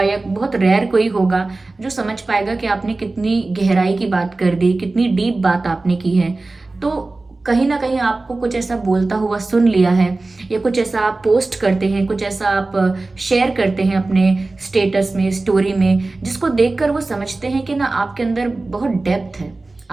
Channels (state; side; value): quieter; left; 3.3 dB